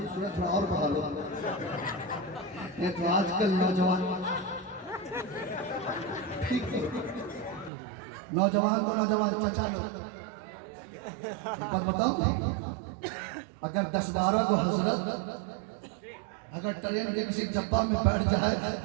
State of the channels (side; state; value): left; drops out; at 7.7 s